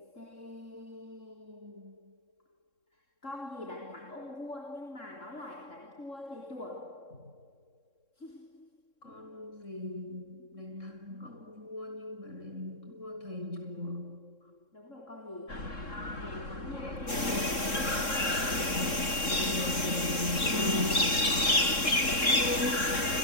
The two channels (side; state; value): right; late; 3.7 ms